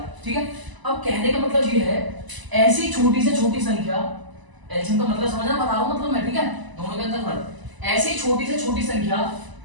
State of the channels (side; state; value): left; late; 1.0 ms